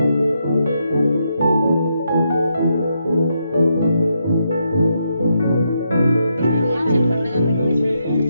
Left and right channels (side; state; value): both; inverted; correlation -0.81